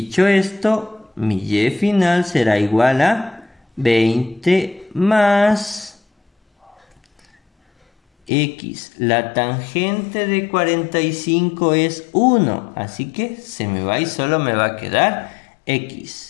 esto, mi y final será igual a 20 más x. La tangente de 45 es 1, así que se me va y solo me va a quedar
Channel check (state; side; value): drops out; right; at 8.3 s